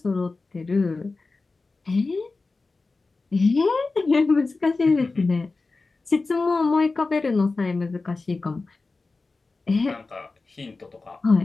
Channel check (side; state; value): right; quieter; 3.7 dB